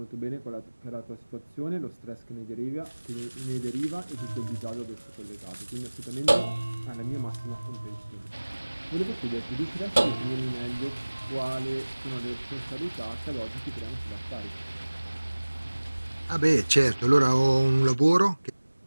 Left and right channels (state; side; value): inverted; both; correlation -1.00